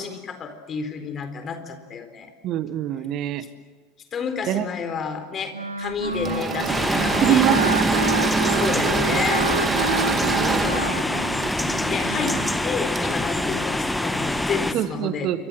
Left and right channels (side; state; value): both; normal; correlation 0.54